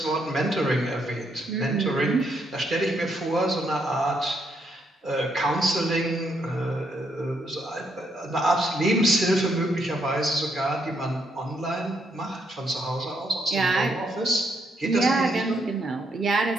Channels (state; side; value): normal; both; correlation 0.75